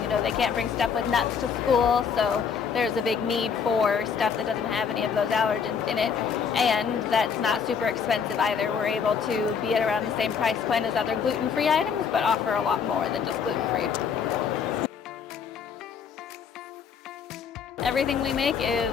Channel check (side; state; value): right; quieter; 6.5 dB